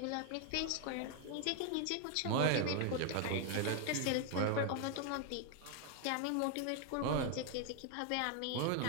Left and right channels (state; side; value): different; both; correlation 0.01